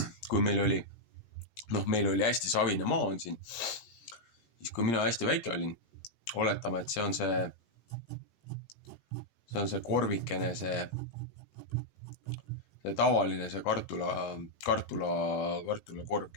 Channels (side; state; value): right; late; 17 ms